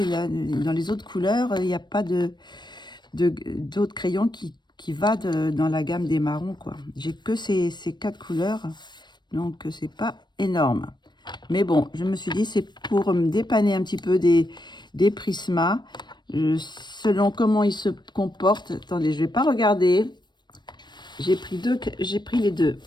là, dans les autres couleurs, il n'y a pas d'autres crayons qui va dans la gamme des marrons, quoi. J'ai que ces 4 couleurs, donc c'est pas énorme. Mais bon, je me suis dit, c'est pour me dépanner un petit peu des Prismas, selon comment ils se comportent. Attendez, je vais pas regarder. J'ai pris les deux.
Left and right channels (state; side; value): late; right; 0.21 ms